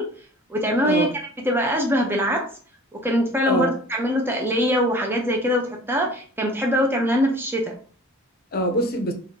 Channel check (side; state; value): both; normal; correlation 0.45